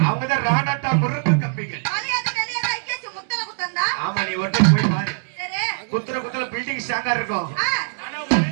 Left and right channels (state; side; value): silent; left; 64 dB below the other